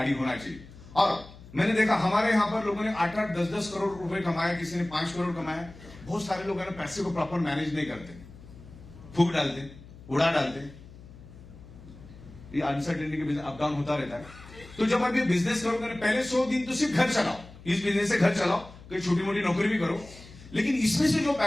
होना चाहिए। और मैंने देखा हमारे यहाँ पर लोगों ने 8-8, 10-10 करोड़ रुपए कमाए, किसी ने 5 करोड़ कमाए। बहुत सारे लोग है ना पैसे को प्रॉपर मैनेज नहीं करते, फूक डालते, उड़ा डालते। ये अनसर्टेनिटी के बिजनेस अप डाउन होता रहता है। तो जब आप ये बिजनेस करोगे ना, पहले 100 दिन तो सिर्फ घर चलाओ, इस बिजनेस से घर चलाओ, कोई छोटी मोटी नौकरी भी करो, लेकिन इसमें से जो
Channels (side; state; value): left; noise; hum, 19 dB below the sound